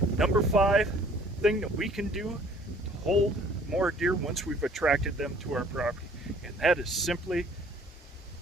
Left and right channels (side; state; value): both; normal; correlation 0.55